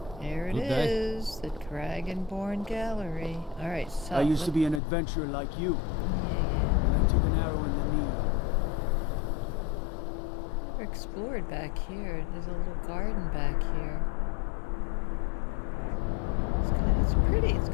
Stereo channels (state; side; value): drops out; right; at 4.8 s